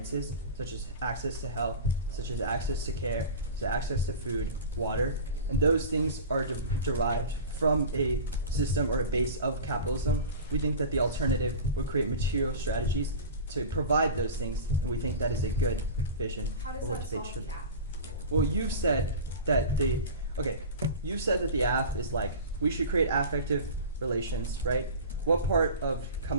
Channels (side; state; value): both; inverted; correlation -0.32